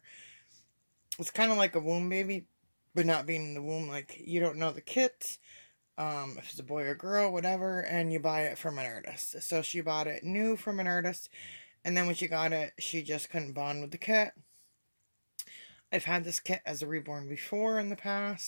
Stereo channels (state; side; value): inverted; both; correlation -1.00